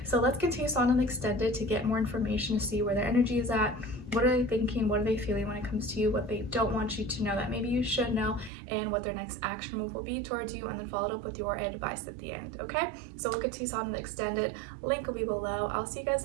so let's continue on and extended to get more information, to see where their energy is at. What are they thinking? What are they feeling when it comes to you? What they don't want you to know that maybe you should know, and what their next action move will be towards you, and then followed up with your advice at the end. Okay, so we'll continue on the extended. Link will be below. I'll see you guys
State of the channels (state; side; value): drops out; left; at 8.5 s